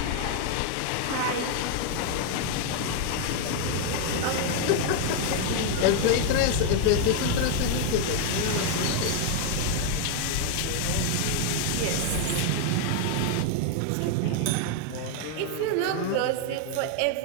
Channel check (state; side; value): different; both; correlation 0.01